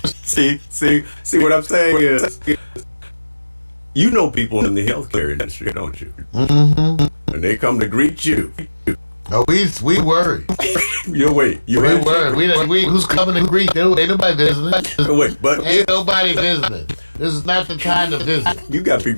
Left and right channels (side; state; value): both; inverted; correlation -1.00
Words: See what I'm saying is, you know people in the healthcare industry, don't you? Mm-hmm. And they come to greet you. Oh, we worry. You wait. You We handshake? worry. We who's coming to greet? Ain't nobody visiting. Wait, but Ain't nobody visiting. This is not the time to visit. you got